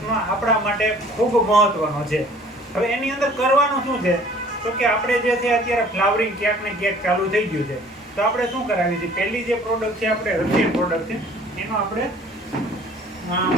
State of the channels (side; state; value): both; normal; correlation 0.52